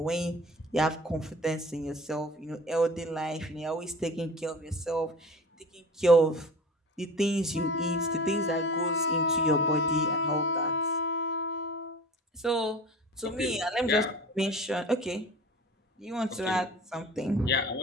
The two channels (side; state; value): both; normal; correlation 0.39